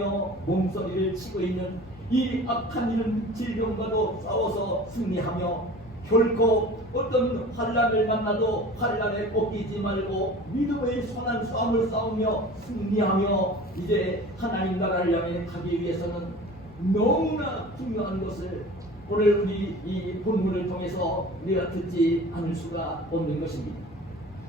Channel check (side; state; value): both; normal; correlation 0.41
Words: 몸서리를 치고 있는 이 악한 이런 질병과도 싸워서 승리하며, 결코 어떤 환난을 만나도 환난에 꺾이지 말고 믿음의 선한 싸움을 싸우며 승리하며 이제 하나님 나라를 향해 가기 위해서는 너무나 중요한 것을 오늘 우리 이 본문을 통해서 우리가 듣지 않을 수가 없는 것입니다.